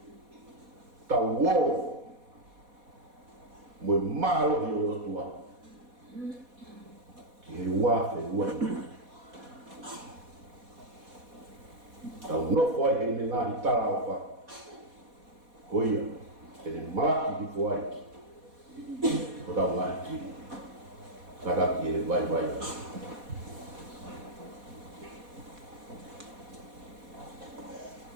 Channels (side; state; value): left; late; 4.1 ms